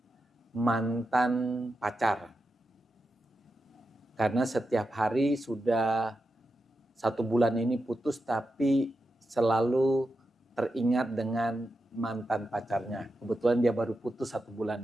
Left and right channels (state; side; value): normal; both; correlation 0.89